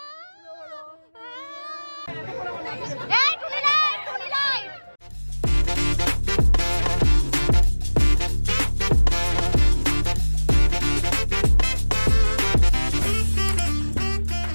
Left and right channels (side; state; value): both; inverted; correlation -1.00